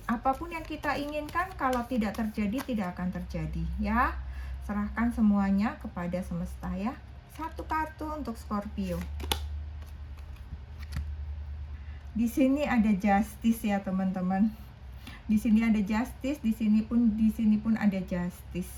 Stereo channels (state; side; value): identical; both; correlation 1.00